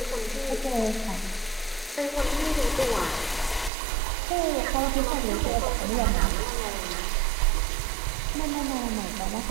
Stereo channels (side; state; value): left; drops out; at 3.7 s